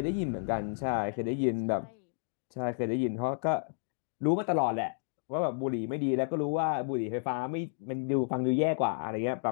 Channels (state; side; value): silent; right; digital silence